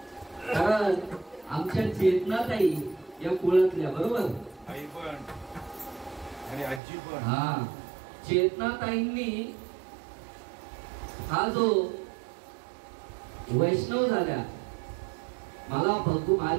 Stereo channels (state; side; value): drops out; left; at 6.8 s